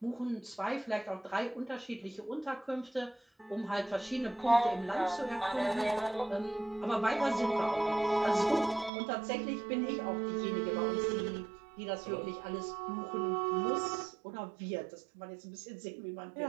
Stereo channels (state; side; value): drops out; left; at 8.9 s